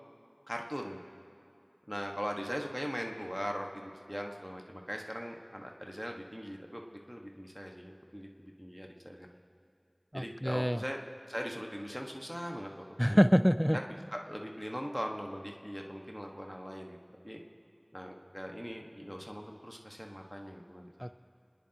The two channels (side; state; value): both; identical; correlation 1.00